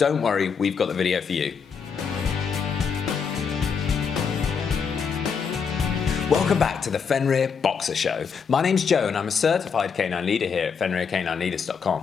worry, we've got the video for you. Welcome back to the Fenrir Boxer Show. My name's Joe and I'm a certified canine leader here at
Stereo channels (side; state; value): right; quieter; 6.2 dB